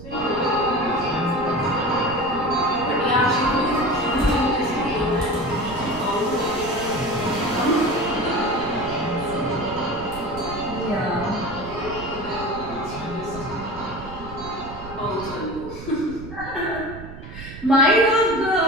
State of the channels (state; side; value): noise; right; rumble, 13 dB below the sound